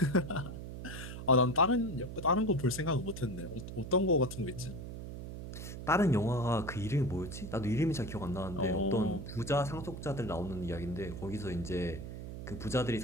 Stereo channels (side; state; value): right; noise; hum, 9 dB below the sound